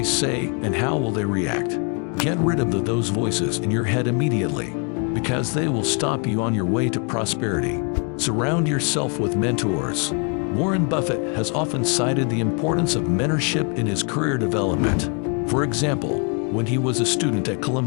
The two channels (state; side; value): quieter; right; 37.8 dB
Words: say and how will they react? Get rid of those voices in your head immediately, because they will stop you on your way to prosperity. Surround yourself with mentors. Warren Buffett has often cited the importance of mentorship in his career development. For example, when he was a student at